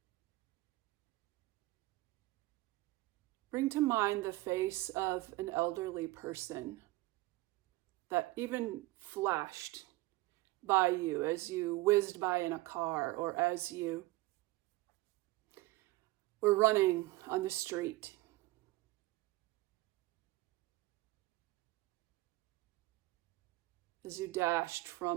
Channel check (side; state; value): left; quieter; 19.7 dB